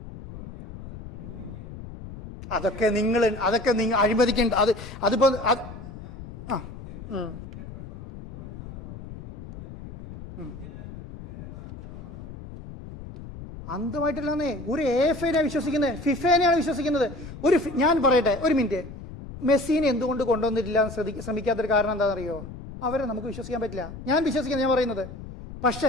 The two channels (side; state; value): left; noise; rumble, 13 dB below the sound